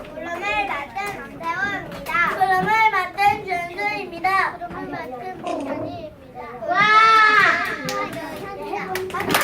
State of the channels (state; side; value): identical; both; correlation 1.00